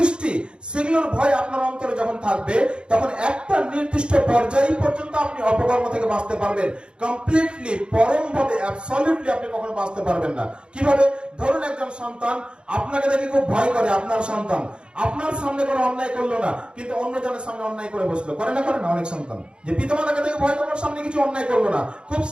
সেগুলোর ভয় আপনার অন্তরে যখন থাকবে, তখন একটা নির্দিষ্ট পর্যায় পর্যন্ত আপনি অপকর্ম থেকে বাঁচতে পারবেন। কমপ্লিটলি, পরম ভাবে, অ্যাবসলিউটলি আপনি কখনো বাঁচতে পারবেন না। কিভাবে? ধরুন একজন সন্তান আপনাকে দেখে খুব ভয় করে। আপনার সন্তান আপনার সামনে কোনো অন্যায় করলো না, কিন্তু অন্যজনের সামনে অন্যায় করে বসলো। করে না? করে না? অনেক সন্তান যে পিতামাতাকে দেখে ভয় করার সামনে কিছু অন্যায় করলো না, খুব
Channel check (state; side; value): late; left; 0.054 ms